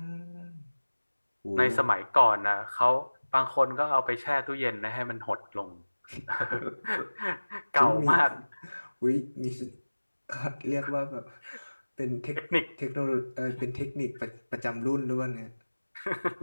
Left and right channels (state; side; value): inverted; both; correlation -1.00